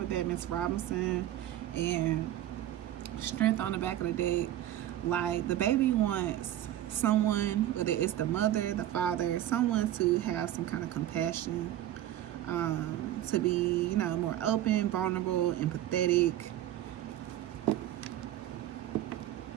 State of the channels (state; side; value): quieter; left; 12.9 dB